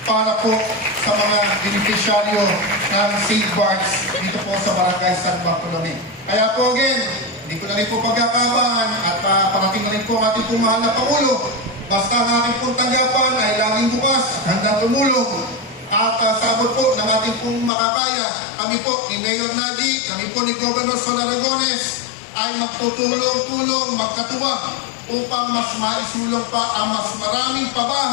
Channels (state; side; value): drops out; right; at 17.7 s